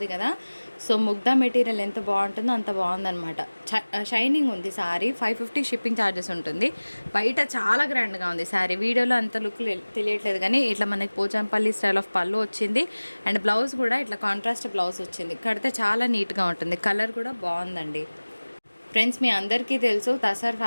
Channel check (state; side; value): inverted; both; correlation -1.00